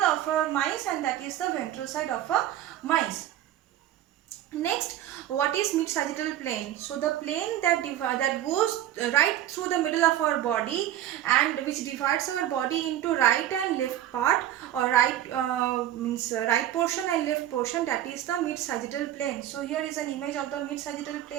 a mice, and that is the ventral side of a mice. Next, what is mid-sagittal plane? So the plane that goes right through the middle of our body and which divides our body into right and left part, or right means right portion and left portion, that is the mid-sagittal plane. So here is an image of the mid-sagittal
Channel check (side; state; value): left; quieter; 12.5 dB